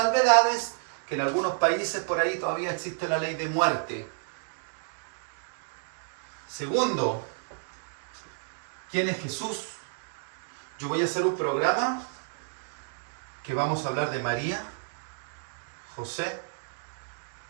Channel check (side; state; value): left; silent; digital silence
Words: que en algunos países por ahí todavía existe la ley de muerte. Segundo, ¿quién es Jesús? Yo voy a hacer un programa que vamos a hablar de María, José,